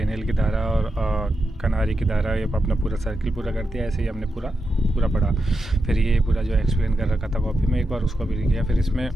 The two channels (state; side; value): normal; both; correlation 0.87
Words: की धारा और कनारी की धारा, ये अपना पूरा सर्किल पूरा करती है। ऐसे ही हमने पूरा पढ़ा। फिर ये पूरा जो एक्सप्लेन कर रखा था कॉपी में, एक बार उसको भी लिख लिया। फिर इसमें